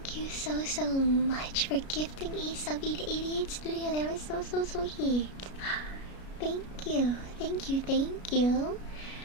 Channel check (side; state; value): right; late; 33 ms